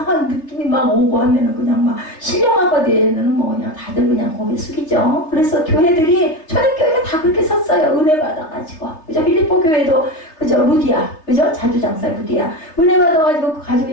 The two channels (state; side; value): late; right; 3.3 ms